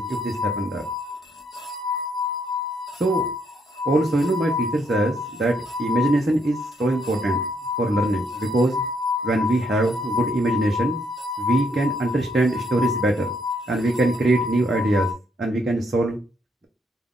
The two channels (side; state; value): both; normal; correlation 0.72